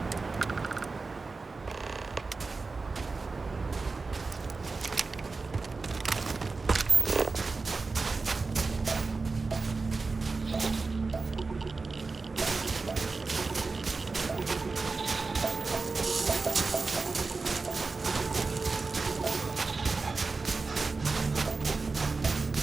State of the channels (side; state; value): left; quieter; 4.0 dB